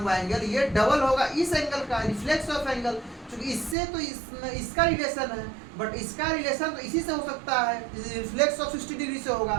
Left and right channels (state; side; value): drops out; left; at 3.8 s